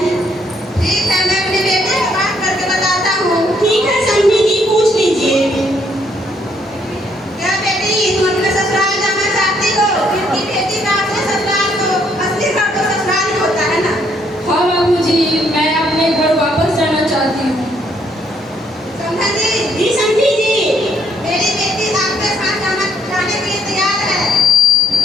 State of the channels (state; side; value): normal; both; correlation 0.69